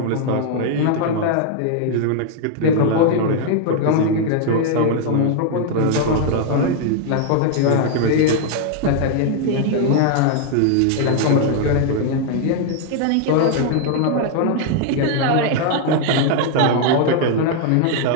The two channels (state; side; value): different; both; correlation 0.00